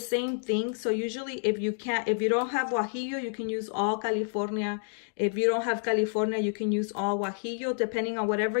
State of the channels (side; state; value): right; silent; digital silence